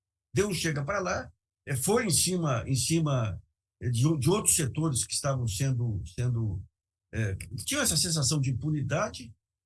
foi em cima de outros setores que estavam que tinham essa sensação de impunidade,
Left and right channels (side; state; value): both; identical; correlation 1.00